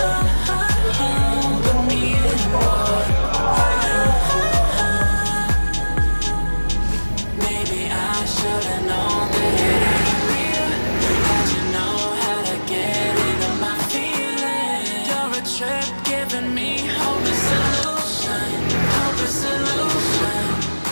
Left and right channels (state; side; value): inverted; both; correlation -1.00